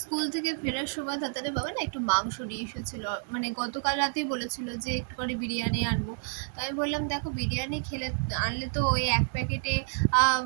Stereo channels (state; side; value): silent; left; digital silence